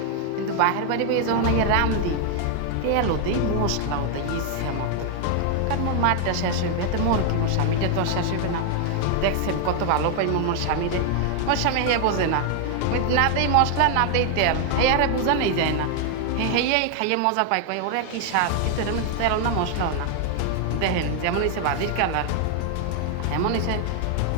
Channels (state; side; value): different; both; correlation 0.00